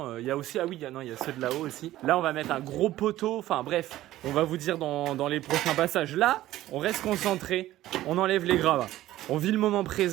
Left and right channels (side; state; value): left; quieter; 14.9 dB